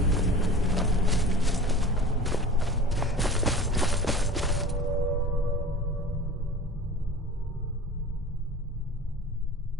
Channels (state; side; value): normal; both; correlation 0.39